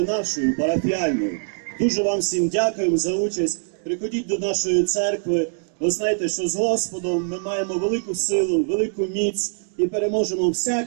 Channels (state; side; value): silent; left; 61 dB below the other